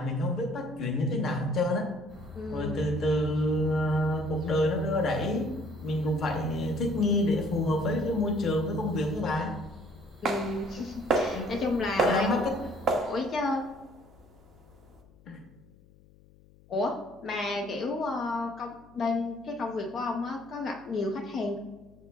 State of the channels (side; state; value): left; noise; hum, 27 dB below the sound